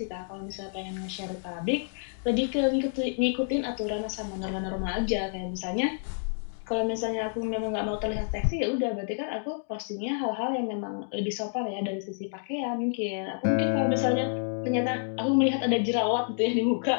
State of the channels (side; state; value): right; silent; digital silence